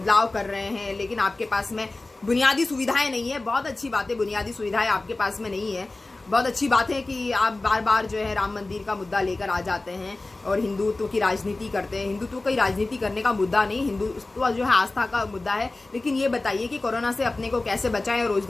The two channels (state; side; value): quieter; right; 3.1 dB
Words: कर रहे हैं, लेकिन आपके पास में बुनियादी सुविधाएं नहीं है। बहुत अच्छी बात है, बुनियादी सुविधाएं आपके पास में नहीं है। बहुत अच्छी बात है कि आप बार बार जो है राम मंदिर का मुद्दा लेकर आ जाते हैं और हिंदुत्व की राजनीति करते हैं। हिंदुत्व की राजनीति करने का मुद्दा नहीं, हिंदुत्व जो है आस्था का मुद्दा है। लेकिन ये बताइए कि कोरोना से अपने को कैसे बचाएं और